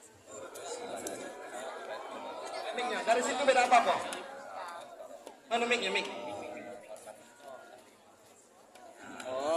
Miknya, dari situ beda apa kok? Mana miknya, mik?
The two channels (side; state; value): both; identical; correlation 1.00